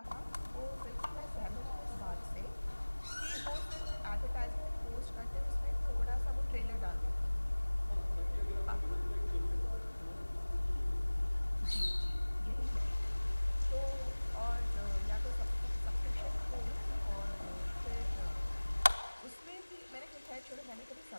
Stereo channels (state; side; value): inverted; both; correlation -1.00